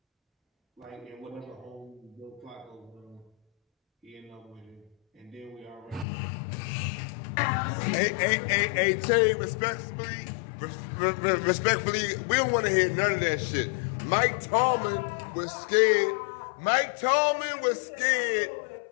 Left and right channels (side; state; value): right; drops out; at 6.1 s